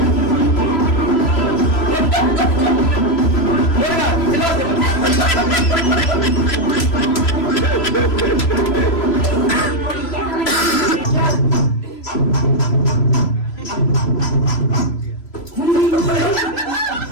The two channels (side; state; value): right; late; 3.0 ms